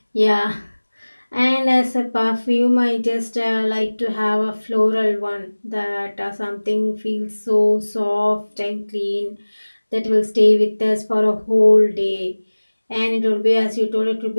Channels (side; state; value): both; inverted; correlation -1.00